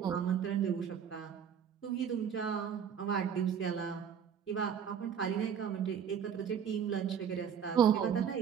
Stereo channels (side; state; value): left; quieter; 7.9 dB